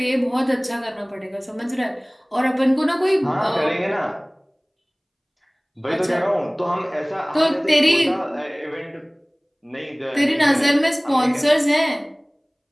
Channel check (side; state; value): both; identical; correlation 1.00